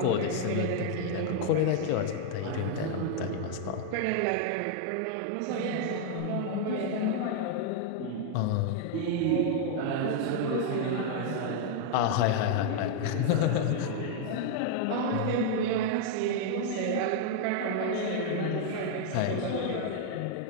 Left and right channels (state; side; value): different; both; correlation 0.00